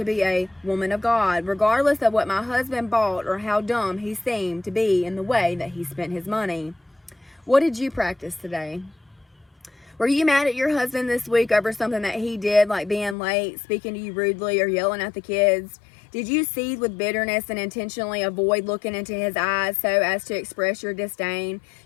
be a woman of God, regardless of what my husband bought or how dumb he seemed to be in the way that he spent his money. What did you practice today? Were you mad at your husband this week over something that he did, like being late, speaking to you rudely, or yelling at the kids? Did you seethe with bitterness and intentionally avoid looking into his eyes so as to express your disdain?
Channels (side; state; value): right; drops out; at 13.2 s